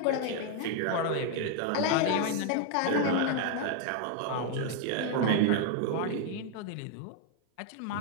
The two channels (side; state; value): both; different; correlation 0.00